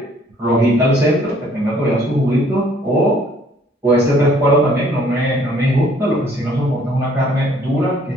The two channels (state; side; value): normal; both; correlation 0.60